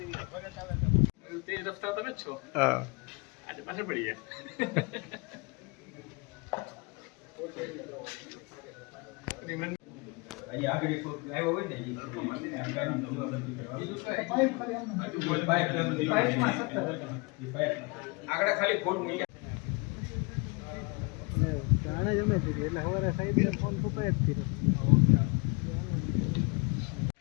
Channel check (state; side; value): quieter; right; 29.4 dB